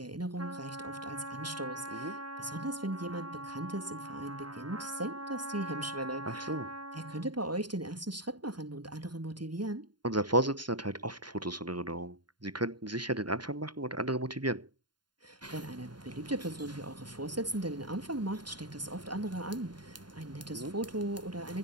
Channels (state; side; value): late; left; 0.71 ms